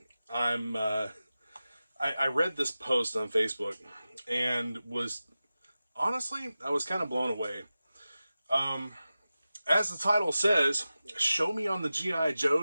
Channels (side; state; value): both; inverted; correlation -0.94